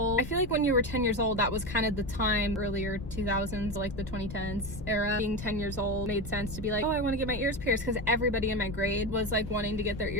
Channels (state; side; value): noise; left; rumble, 11 dB below the sound